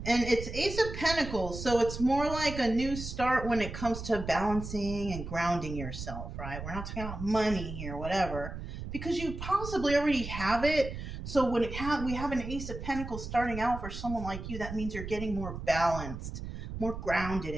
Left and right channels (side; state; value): right; noise; rumble, 8 dB below the sound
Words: And it's Ace of Pentacles, so it's more like a new start when it comes to balancing and grounding yourself, right? We're not talking about money here, whatever, because you possibly already have it. So when we have an Ace of Pentacles starting out for someone like you, that means you're getting more balanced, more grounded